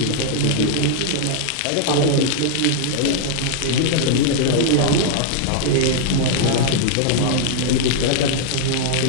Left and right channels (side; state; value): both; different; correlation -0.01